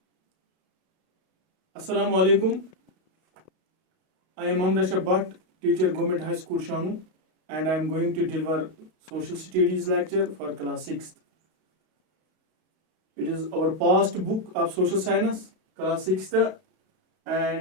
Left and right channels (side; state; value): left; late; 32 ms